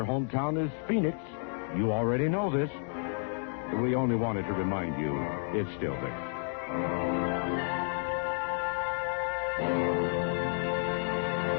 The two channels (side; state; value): right; silent; 57 dB below the other